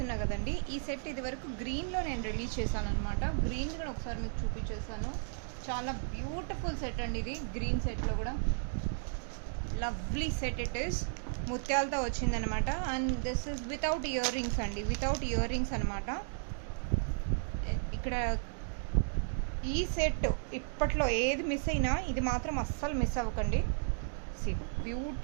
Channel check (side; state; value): left; silent; digital silence